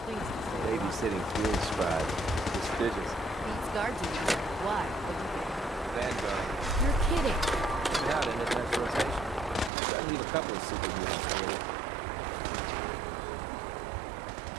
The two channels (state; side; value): drops out; left; at 9.7 s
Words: things. Babysitting field scribe. Prestigious. Beats guard duty. Why? Vanguard. You're kidding. Yeah, in advanced rotation. I need a couple of super mutants.